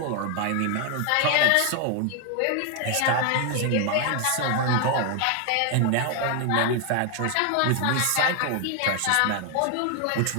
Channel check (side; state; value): both; different; correlation 0.00